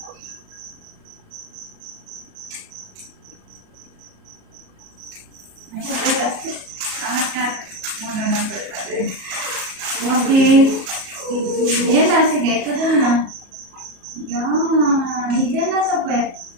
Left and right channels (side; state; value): left; late; 37 ms